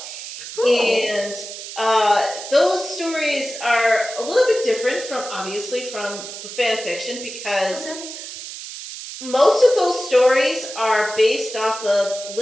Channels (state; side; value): noise; right; hiss, 10 dB below the sound